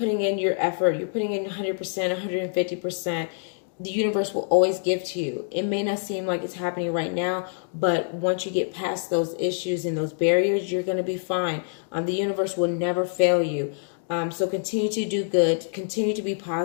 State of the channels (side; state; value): right; silent; digital silence